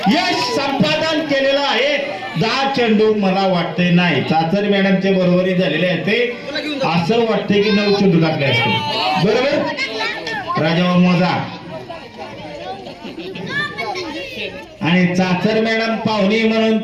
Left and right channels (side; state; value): both; identical; correlation 1.00